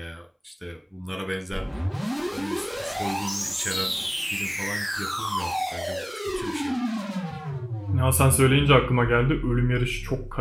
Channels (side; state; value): both; identical; correlation 1.00